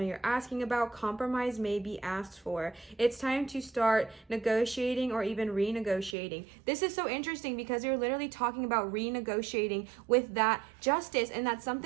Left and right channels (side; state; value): left; drops out; at 6.2 s